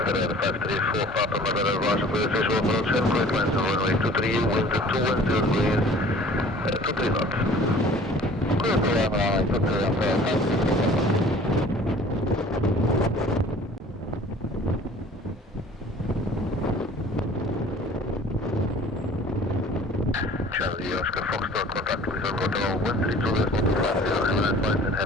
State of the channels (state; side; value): normal; both; correlation 0.48